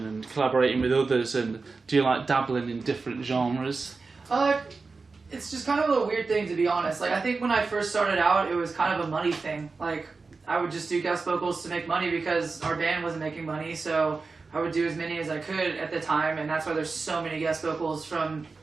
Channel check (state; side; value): quieter; left; 4.2 dB